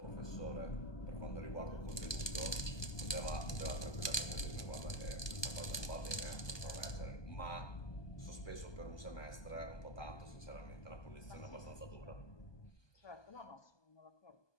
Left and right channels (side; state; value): right; late; 1.2 ms